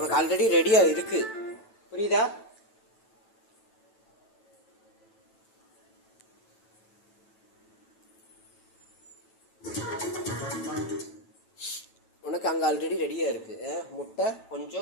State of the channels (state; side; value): late; right; 9.1 ms